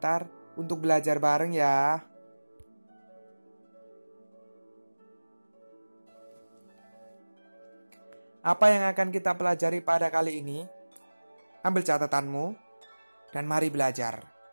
untuk belajar bareng ya. Apa yang akan kita pelajari pada kali ini? Ambil catatanmu dan mari belajar.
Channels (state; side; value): inverted; both; correlation -1.00